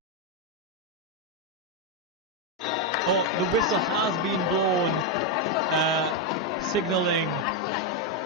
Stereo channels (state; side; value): normal; both; correlation 0.03